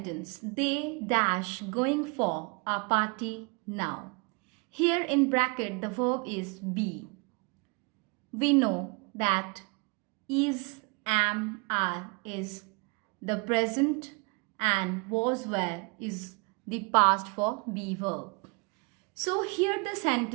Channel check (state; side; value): quieter; left; 31.3 dB